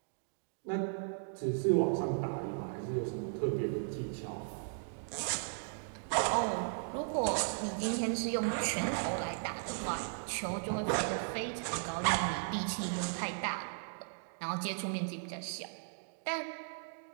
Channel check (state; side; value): silent; left; digital silence